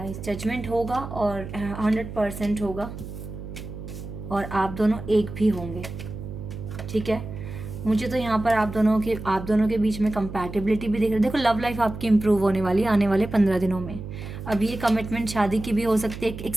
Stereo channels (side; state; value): right; noise; hum, 10 dB below the sound